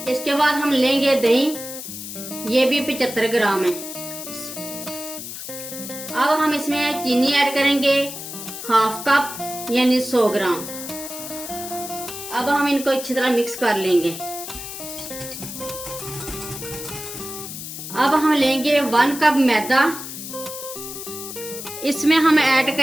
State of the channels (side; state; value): left; noise; hiss, 9 dB below the sound